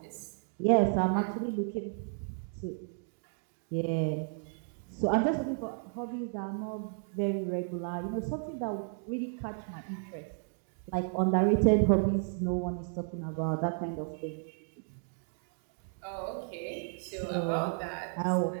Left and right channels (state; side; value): silent; left; 56 dB below the other